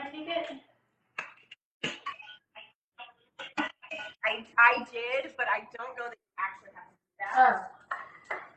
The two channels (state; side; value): identical; both; correlation 1.00